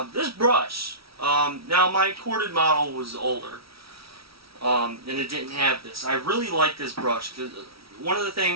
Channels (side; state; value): left; late; 0.75 ms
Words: This brush, now my corded model was older, and it didn't have this. I really like this brush because one of the